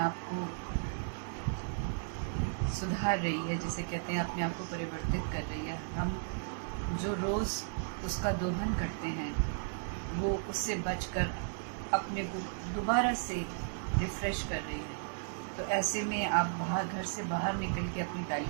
आप को सुधार रही है, जिसे कहते हैं अपने आप को परिवर्तित कर रही है। हम जो रोज़ उसका दोहन करते हैं वो उससे बचकर अपने को दोबारा से रिफ़्रेश कर रही है। तो ऐसे में आप घर से बाहर निकल के अपनी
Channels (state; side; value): silent; left; digital silence